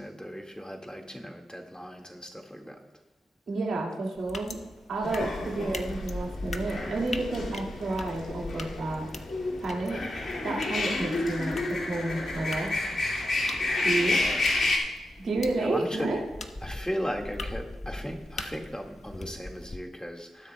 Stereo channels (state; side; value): normal; both; correlation 0.87